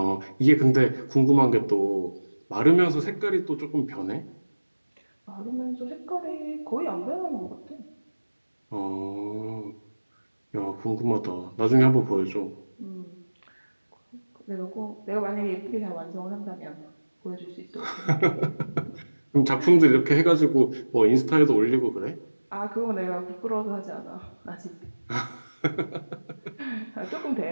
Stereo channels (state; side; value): inverted; both; correlation -1.00